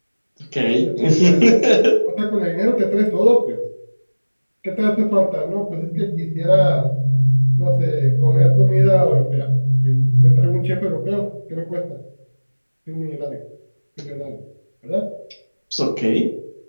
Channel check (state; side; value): inverted; both; correlation -1.00